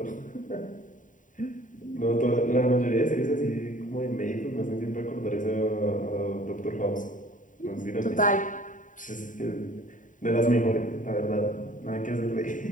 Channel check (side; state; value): right; late; 0.38 ms